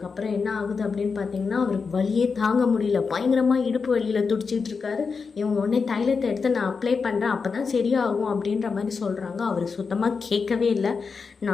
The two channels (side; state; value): right; quieter; 5.1 dB